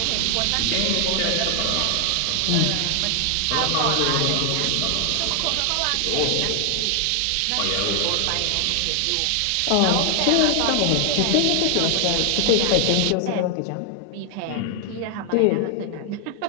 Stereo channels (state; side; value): different; both; correlation 0.00